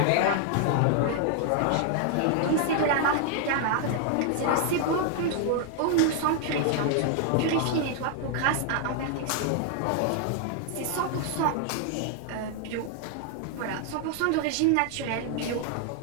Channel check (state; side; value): different; both; correlation 0.00